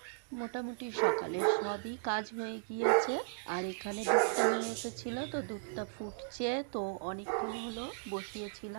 মোটামুটি সকালে সবই কাজ হয়ে গিয়েছে। আর এখানে দুধটা নিয়ে এসেছিল, তো দুধটা ফুটছে, তো অনেকক্ষণ হলো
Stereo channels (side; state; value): left; silent; digital silence